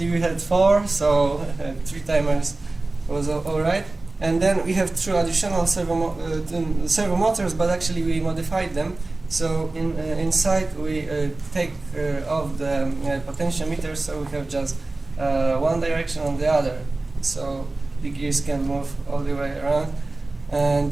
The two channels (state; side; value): quieter; left; 3.1 dB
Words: we had 4, so 3 timers was all right. And then we have 2 additional servo motors, but actually we modified them. So inside we take off the potentiometer, so we have just one direction on the other. So the gears can move all the way around. And